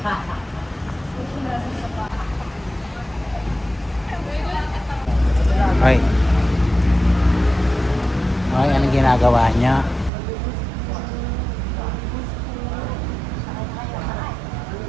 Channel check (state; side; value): drops out; left; at 10.1 s